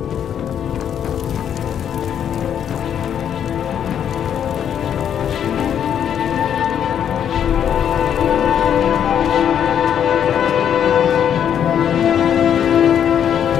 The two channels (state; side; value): quieter; right; 9.0 dB